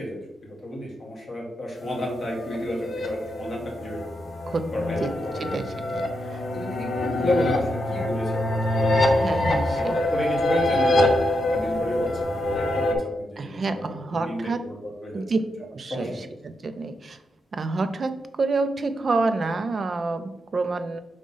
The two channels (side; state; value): both; normal; correlation 0.84